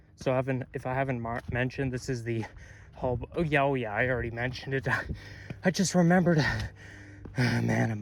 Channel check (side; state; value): both; identical; correlation 1.00